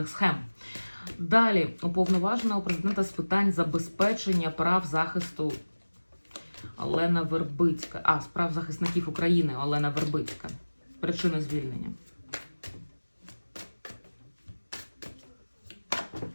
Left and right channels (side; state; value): both; inverted; correlation -1.00